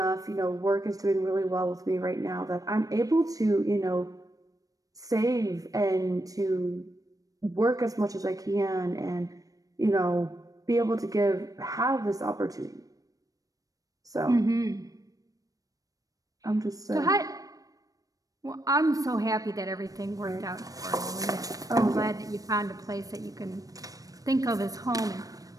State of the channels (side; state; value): left; late; 0.17 ms